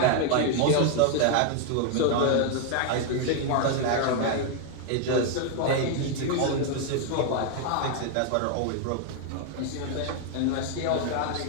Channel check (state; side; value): different; both; correlation 0.00